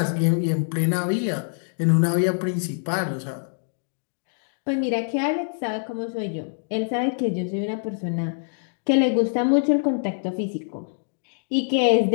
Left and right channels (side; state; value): right; silent; digital silence